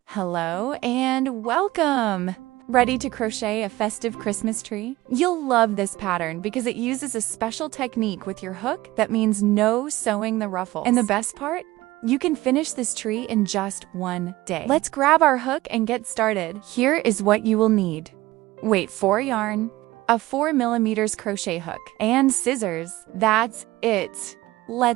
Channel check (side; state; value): left; quieter; 18.1 dB